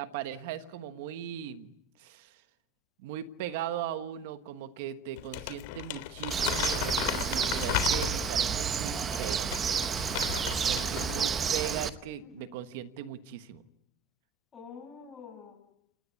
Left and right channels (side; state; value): left; quieter; 3.5 dB